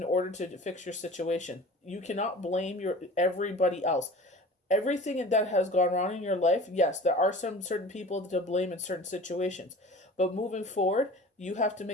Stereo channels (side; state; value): both; normal; correlation 0.40